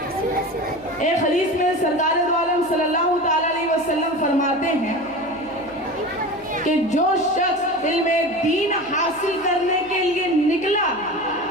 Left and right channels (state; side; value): noise; right; hum, 26 dB below the sound